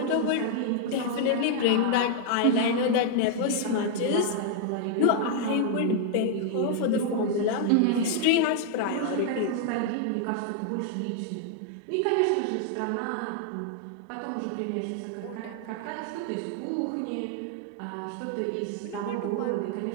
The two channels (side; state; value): both; different; correlation 0.00